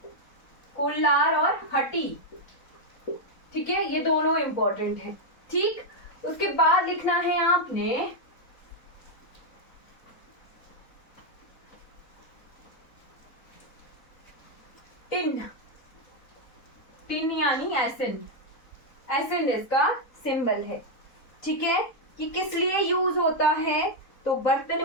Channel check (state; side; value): late; right; 4.1 ms